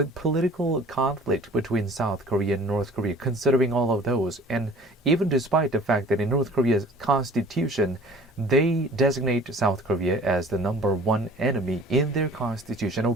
conflict between South Korea and North Korea, considering all of those, and even despite the fact that in North Korea's constitution, they designate South Korea as the number one enemy in their constitution.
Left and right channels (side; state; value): both; normal; correlation 0.48